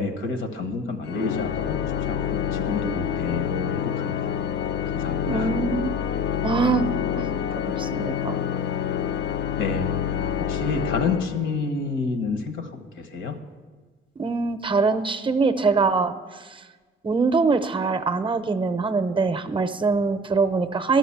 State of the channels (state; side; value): normal; both; correlation 0.41